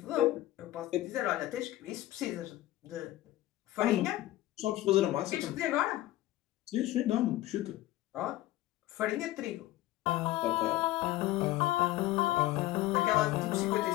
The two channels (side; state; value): right; quieter; 15.9 dB